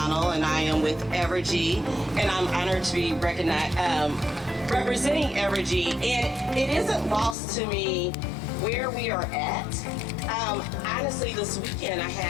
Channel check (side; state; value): right; drops out; at 7.4 s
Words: and I am with Evergy, and I'm honored to be recognized, representing Evergy. And it isn't lost to me where we are at. Honestly, this weekend I